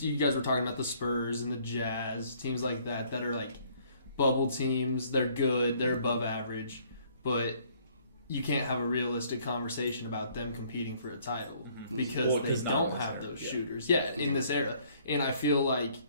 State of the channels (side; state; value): both; inverted; correlation -0.62